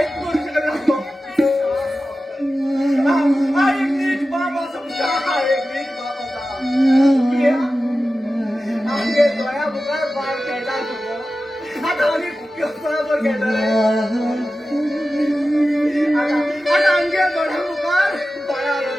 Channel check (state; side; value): normal; both; correlation 0.94